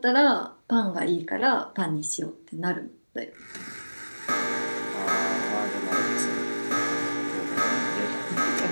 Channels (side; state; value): both; inverted; correlation -1.00